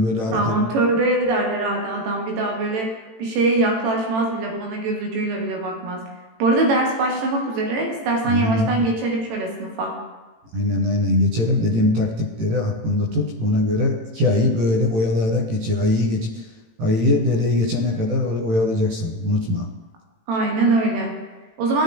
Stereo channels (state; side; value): late; left; 18 ms